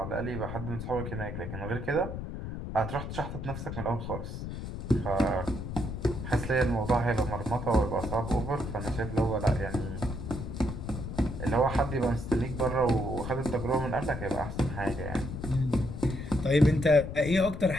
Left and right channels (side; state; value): left; noise; rumble, 7 dB below the sound